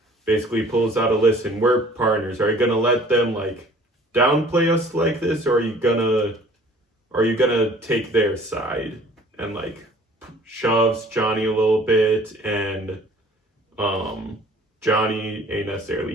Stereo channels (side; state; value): both; normal; correlation 0.52